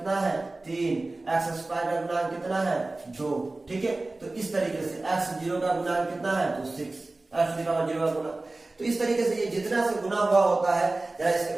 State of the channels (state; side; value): quieter; left; 3.1 dB